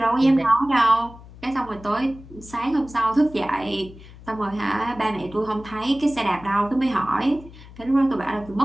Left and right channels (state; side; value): noise; left; hum, 19 dB below the sound